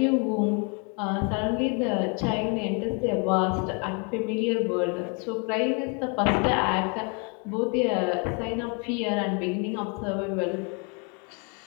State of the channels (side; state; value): right; quieter; 34.9 dB